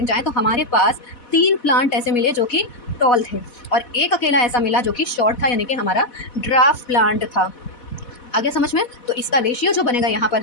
जाए तो हमारे पास 3 प्लांट ऐसे मिले जो कि टॉल थे और एक अकेला ऐसा मिला जो कि शॉर्ट था, यानी कि हमारा ड्राफ्ट प्लांट था। आगे समझ में, तो इसका रेशियो जो बनेगा यहाँ पर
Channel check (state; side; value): late; right; 4.1 ms